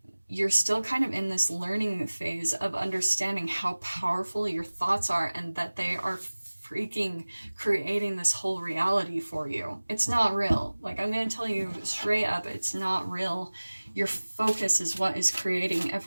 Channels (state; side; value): inverted; both; correlation -1.00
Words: of in this learning phase of understanding how powerful your thoughts are, and that they are freaking creating this whole reality for you. It's not real. Like, I'm going to tell you straight up, it's not real. Your focus is what is creating